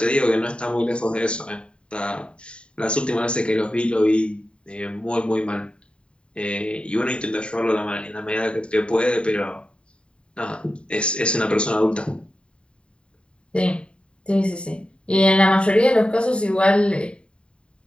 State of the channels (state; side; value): late; right; 0.054 ms